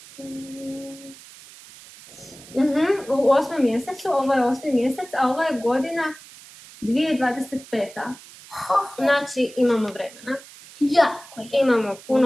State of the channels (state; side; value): noise; right; hiss, 20 dB below the sound